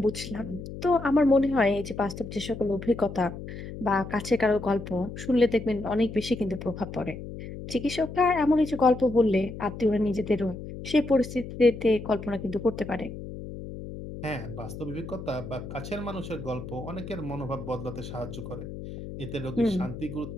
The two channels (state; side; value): noise; left; hum, 10 dB below the sound